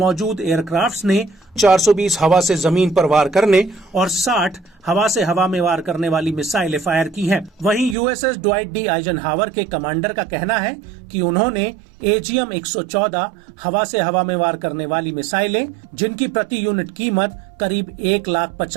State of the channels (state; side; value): drops out; left; at 8.0 s